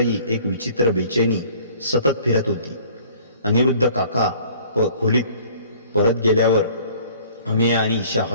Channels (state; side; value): inverted; both; correlation -0.53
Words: एक विचित्र बेचैनी सतत फिरत होती. अनिरुद्ध काका खोलीत परत गेल्यावर अमेया आणि ईशा